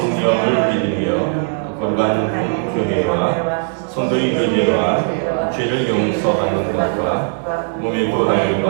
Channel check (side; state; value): left; silent; 60 dB below the other